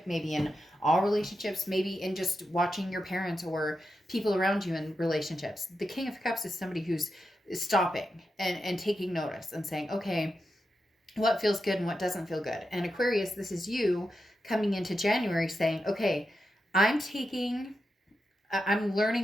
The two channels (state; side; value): normal; both; correlation 0.88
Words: maybe in all relationships, maybe in just watching your parents or people around you in relationships. The King of Cups is somebody who's stopping and taking notice and saying, okay, what feels good and what doesn't feel good. And Aquarius, this is you coming into January saying, okay, I'm learning